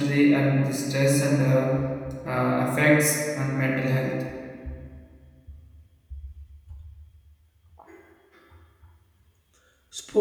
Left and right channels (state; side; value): identical; both; correlation 1.00